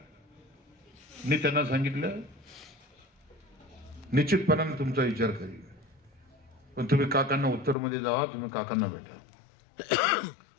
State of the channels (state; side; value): drops out; right; at 7.8 s